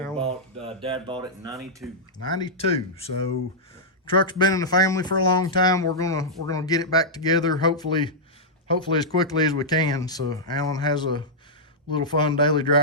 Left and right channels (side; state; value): both; normal; correlation -0.09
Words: Dad bought it in 92. 92. So truck's been in the family for a long time. We're gonna get it back together, hopefully as quickly as we can. So Alan has a little fun daily